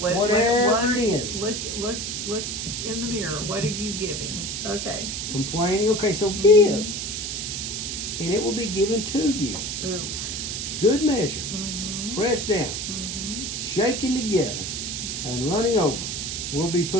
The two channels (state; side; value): noise; right; hiss, 4 dB below the sound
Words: it is. Look in the mirror. What are you giving? Okay. Complaining. Okay, so give. And it will be given to you. Ooh. Good measure. Pressed down. Shaken together. And running over will be